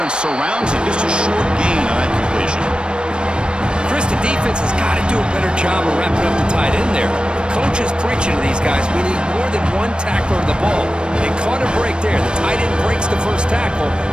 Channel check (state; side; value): late; left; 0.054 ms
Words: surrounds him. Just a short gain on that completion. Chris, the defense has got to do a better job of wrapping up the tight end there. The coach is preaching to these guys. We need more than one tackler of the ball. They caught a break there. The tight end breaks the first tackle,